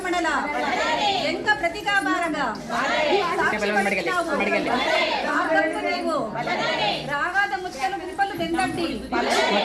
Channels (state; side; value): identical; both; correlation 1.00